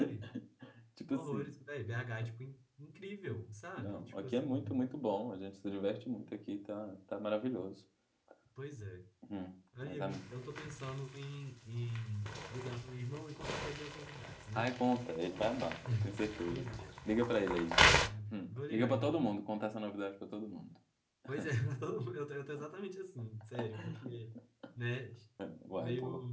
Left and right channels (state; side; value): identical; both; correlation 1.00